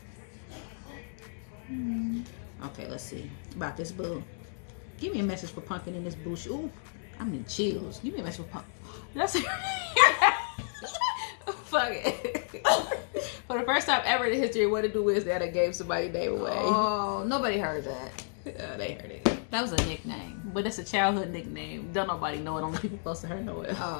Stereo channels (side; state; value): right; silent; 55 dB below the other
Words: Okay, let's see. About this boo. Give me a message for Pumpkin in this bush. Ooh, I'm in chills. Give me a message for Pumpkin. That's fuck it. For the first time ever in the history, what to do is that I gave somebody name away. Oh, nobody heard that. They heard it. That was a nickname. But it's a childhood nickname. Don't nobody know it. Only people close to her know it.